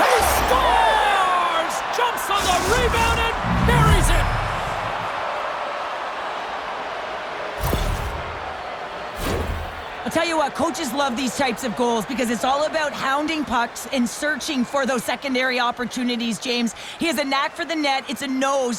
scores! Jumps on the rebound and buries it. I'll tell you what, coaches love these types of goals because it's all about hounding pucks and searching for those secondary opportunities, James. He has a knack for the net. It's a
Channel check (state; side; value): identical; both; correlation 1.00